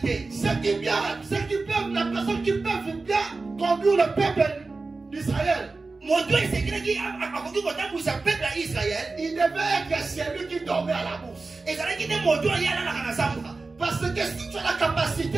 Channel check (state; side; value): quieter; left; 3.7 dB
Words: La personne qui peut bien conduire le peuple d'Israël. Il devait être celui qui dormait à la bourse. Parce que si tu as la